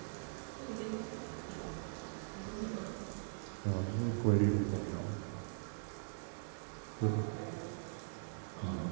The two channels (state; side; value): silent; left; digital silence